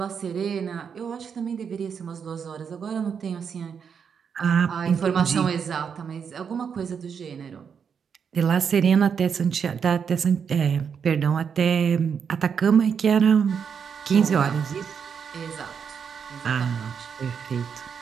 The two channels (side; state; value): left; quieter; 6.8 dB